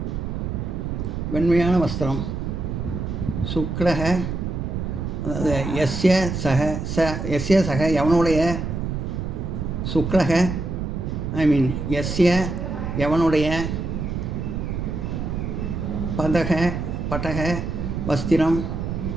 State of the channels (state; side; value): noise; right; rumble, 3 dB below the sound